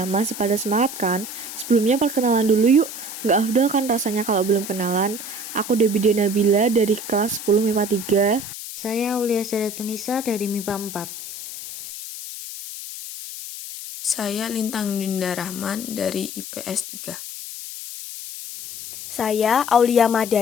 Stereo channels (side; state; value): left; noise; hiss, 10 dB below the sound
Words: Masih pada semangat kan? Sebelumnya perkenalan dulu yuk. Nggak afdol kan rasanya kalau belum kenalan? Aku Debbie Nabila dari kelas 10 MIPA 3. Saya Aulia Tunisa dari MIPA 4. Saya Lintang Dinda Rahman dari IPS 3. Saya Aulia